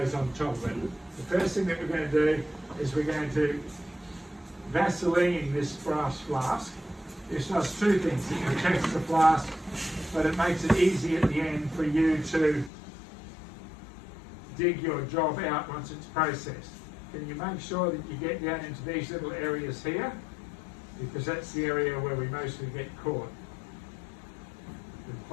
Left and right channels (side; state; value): right; drops out; at 12.7 s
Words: on top of it. The first thing that we're going to do is we're going to Vaseline this brass flask. This does two things. It protects the flask, but it makes it easy at the end for you to dig your job out once it's processed. Can you make sure that you get down into these little areas here? Because that's the area where we mostly get caught. With